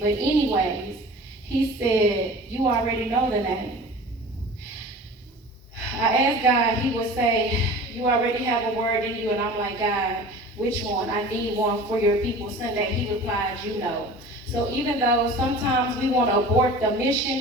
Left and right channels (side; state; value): both; normal; correlation 0.40